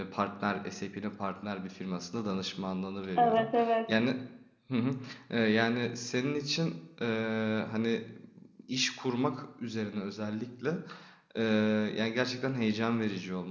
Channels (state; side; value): identical; both; correlation 1.00